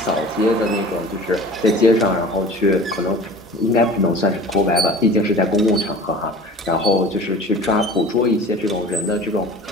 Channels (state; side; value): normal; both; correlation 0.41